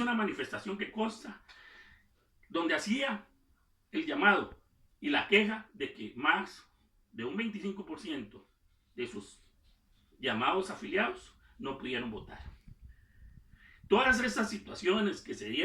una manifestación que consta donde hacía el llamado y la queja de que más de un 25% de sus llamados afiliados no pudieron votar. Todas estas situaciones que se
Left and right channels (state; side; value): identical; both; correlation 1.00